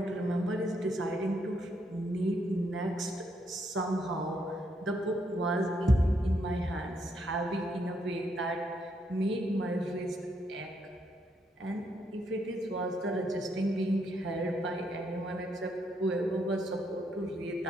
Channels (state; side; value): normal; both; correlation 0.76